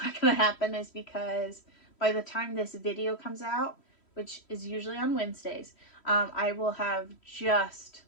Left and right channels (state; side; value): late; right; 3.1 ms